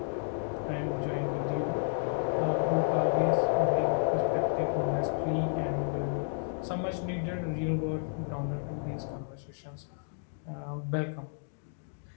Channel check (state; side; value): silent; right; digital silence